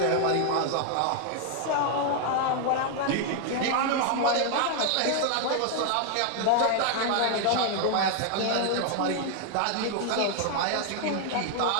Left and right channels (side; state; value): both; different; correlation 0.00